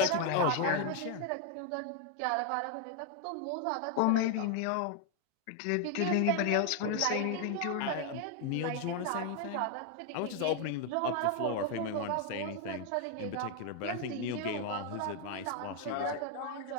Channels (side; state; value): both; different; correlation 0.01